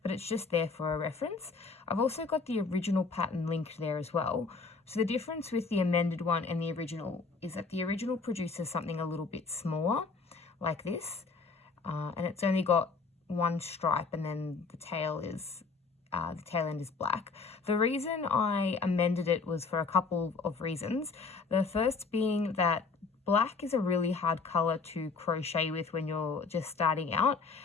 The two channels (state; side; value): quieter; right; 4.5 dB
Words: but it's just there for a reference. I've also got the original pattern linked there as well. So the difference with the amended one and the original is that the original produces something a little bit smaller like this. And it's only got one stripe and then the tail end is black. The reason I amended it was for a couple of reasons. The first being that black is a really hard color to crochet with when you're just starting out,